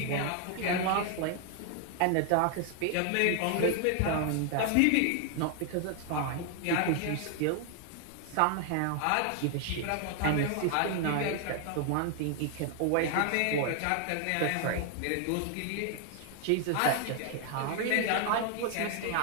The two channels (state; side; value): different; both; correlation 0.00